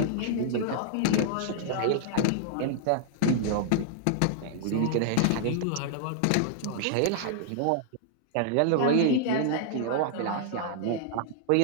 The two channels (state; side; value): different; both; correlation -0.01